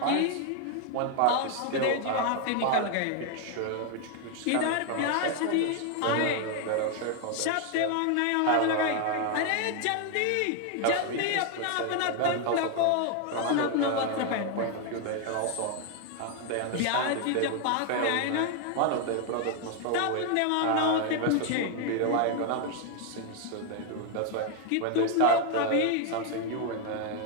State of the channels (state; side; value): different; both; correlation 0.00